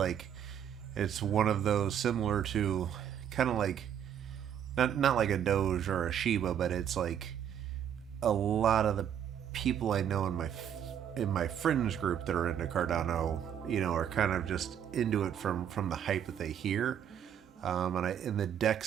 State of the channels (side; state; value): left; quieter; 9.3 dB